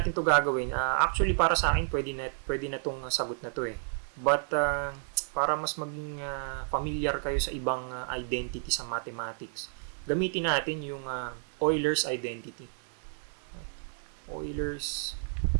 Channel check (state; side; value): silent; left; digital silence